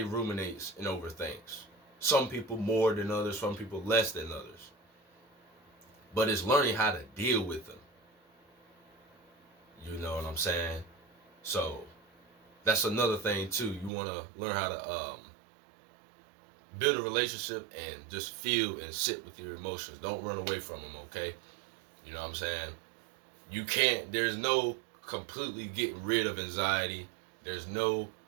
ruminates and overthinks. Some people more than others, some people less than others. But it's learning how to deal with them. You know what I'm saying? So that's another thing too. You want to learn how to build a relationship and just feel and sit with your emotions. Don't run away from them, okay? You know what I'm saying? You can't, there's no completely getting rid of anxiety. There's no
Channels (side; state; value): left; drops out; at 13.9 s